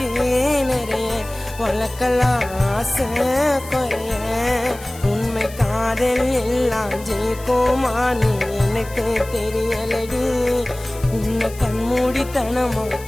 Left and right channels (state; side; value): noise; left; hiss, 18 dB below the sound